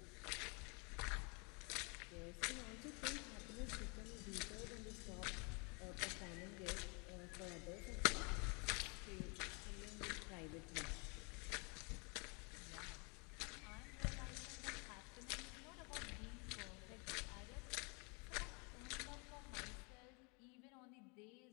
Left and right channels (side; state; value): right; quieter; 32.6 dB